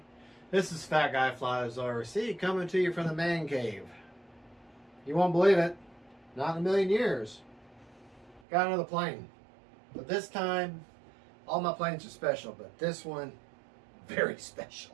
This is Fat Guy Flies RC coming to you from the man cave. You won't believe it, not in a million years. Got another plane, but this time all my planes are special, but this one very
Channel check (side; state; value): left; drops out; at 8.4 s